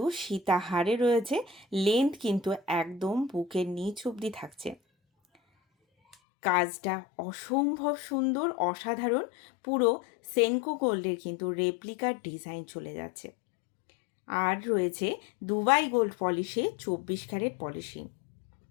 সীতাহারে রয়েছে, লেন্থ কিন্তু একদম বুকের নিচ অবধি থাকছে। কাজটা অসম্ভব সুন্দর, অসাধারণ। পুরো সেনকো গোল্ডের কিন্তু রেপ্লিকার ডিজাইন চলে যাচ্ছে। আর রয়েছে দুবাই গোল্ড পলিশে 24 ক্যারেট পলিশিং।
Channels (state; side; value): drops out; right; at 6.2 s